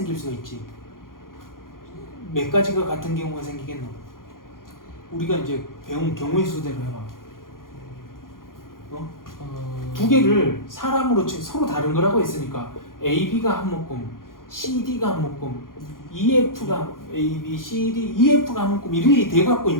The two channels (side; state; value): right; late; 0.91 ms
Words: 수가 있지. 몇 가지가 같은 경우가 생기겠노? 우리가 이제 배운 경우의 수대로 해봐. 두 개를 사람으로 지금 서로 다른 거라고 했으니까 AB가 한 묶음, CD가 한 묶음, EF가 A, B, C, D, EF가 한 묶음 이렇게 돼갖고